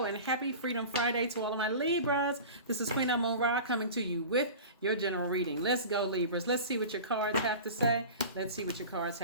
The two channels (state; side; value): inverted; both; correlation -0.34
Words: happy Freedom Friday to all of my Libras. This is Queen Amun Ra coming to you with your general reading. Let's go, Libras. Let's see what your cards have to say.